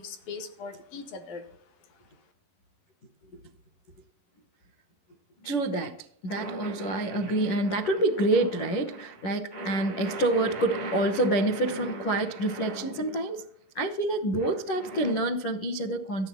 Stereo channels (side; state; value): right; late; 11 ms